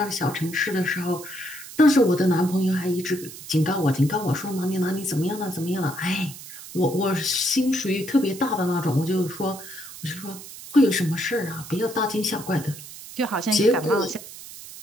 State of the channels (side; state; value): right; noise; hiss, 14 dB below the sound